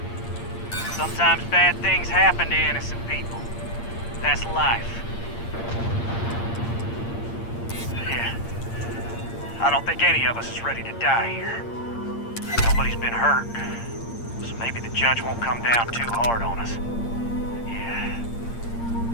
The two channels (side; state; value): right; late; 8.7 ms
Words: Sometimes bad things happen to innocent people. That's life. Yeah. I don't think any of us is ready to die here. Nobody's been hurt, so maybe the judge won't come down too hard on us. Yeah.